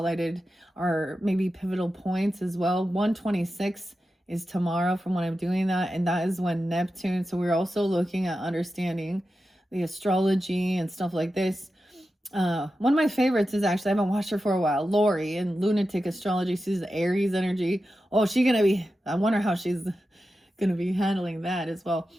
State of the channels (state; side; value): normal; both; correlation 0.91